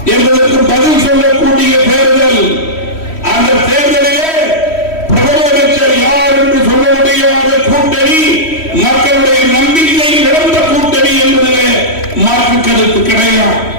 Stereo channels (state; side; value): late; right; 3.1 ms